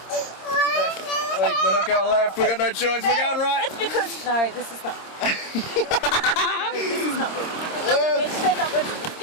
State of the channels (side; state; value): right; late; 26 ms